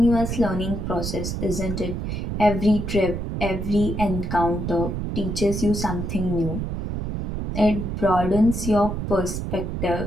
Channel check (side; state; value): right; noise; rumble, 3 dB below the sound